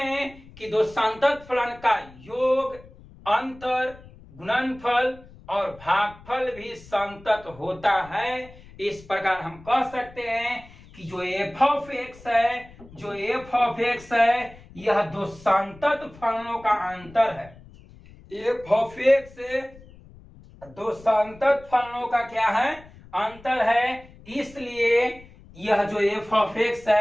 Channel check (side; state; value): left; noise; rumble, 22 dB below the sound